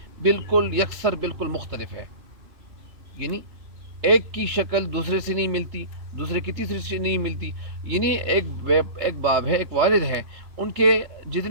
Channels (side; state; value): left; late; 3.0 ms